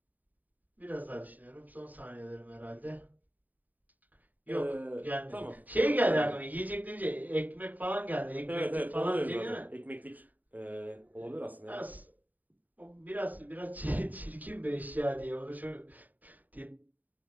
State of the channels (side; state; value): left; late; 0.082 ms